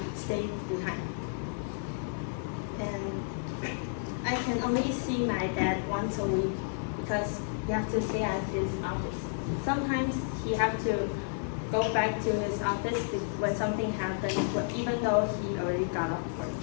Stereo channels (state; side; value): silent; right; 57 dB below the other